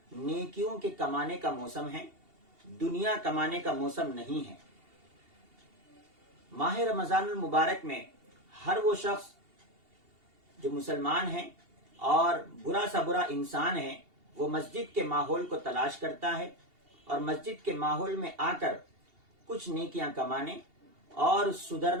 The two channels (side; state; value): left; late; 2.8 ms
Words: نیکیوں کے کمانے کا موسم ہے، دنیا کمانے کا موسم نہیں ہے. ماہ رمضان المبارک میں ہر وہ شخص جو مسلمان ہے اور برا سا برا انسان ہے، وہ مسجد کے ماحول کو تلاش کرتا ہے اور مسجد کے ماحول میں آ کر کچھ نیکیاں کمانے اور